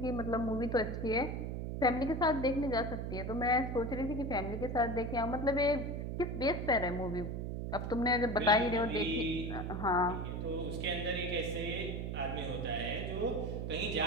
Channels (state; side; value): noise; right; hum, 3 dB below the sound